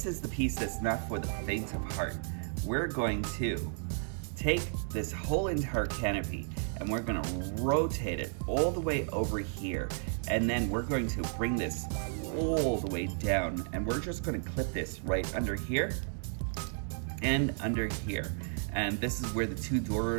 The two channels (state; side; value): silent; left; 56 dB below the other